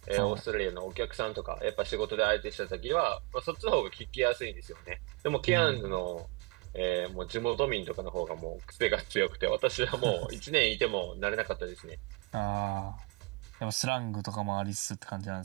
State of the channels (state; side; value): quieter; left; 26.0 dB